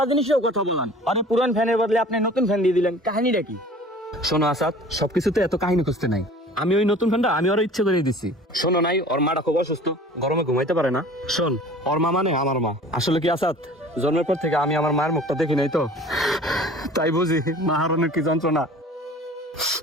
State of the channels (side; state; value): both; normal; correlation 0.45